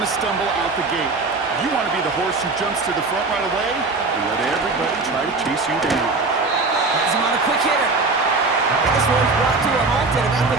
to stumble out the gate. You want to be the horse who jumps to the front right away and let everybody try to chase you down. Has him on a quick hitter. And this one's brought to a halt at about the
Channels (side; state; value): left; quieter; 3.7 dB